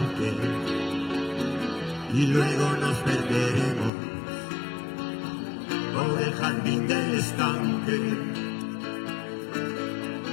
y luego nos perderemos por el jardín del estanque.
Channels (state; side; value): drops out; right; at 3.9 s